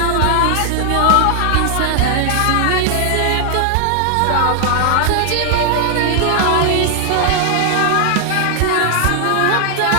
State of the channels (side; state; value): both; different; correlation 0.00